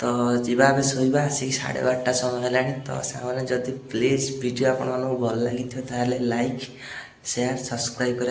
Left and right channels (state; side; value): identical; both; correlation 1.00